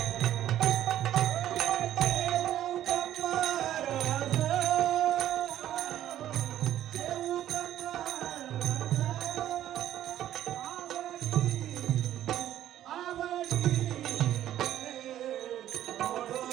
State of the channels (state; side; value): quieter; left; 12.2 dB